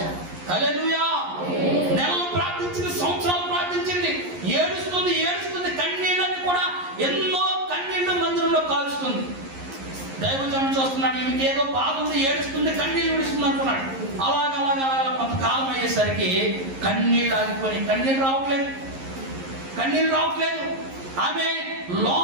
హల్లెలూయా. నెలలు ప్రార్థించింది, సంవత్సరాలు ప్రార్థించింది, ఏడుస్తుంది. కన్నీళ్ళని కూడా ఎన్నో కన్నీళ్లు మందిరంలో కాలుస్తుంది. దైవజనం చూస్తున్నాడు, ఈమెకి ఏదో బాధ ఉంది, ఏడుస్తుంది, కన్నీళ్ళు విడుస్తుంది అనుకున్నాడు. అలాగ కొంతకాలం అయ్యేసరికి కన్నీళ్ళు ఆగిపోయి కన్నీళ్ళు రావట్లేదు. ఆమె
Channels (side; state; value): left; late; 11 ms